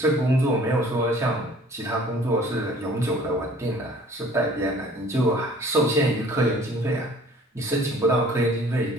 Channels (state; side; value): normal; both; correlation 0.52